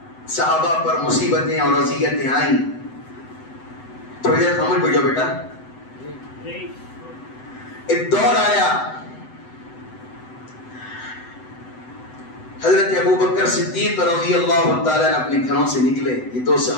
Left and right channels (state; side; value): late; right; 8.0 ms